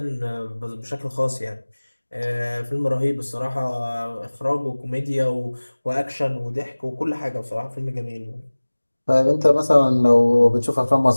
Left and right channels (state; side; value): inverted; both; correlation -1.00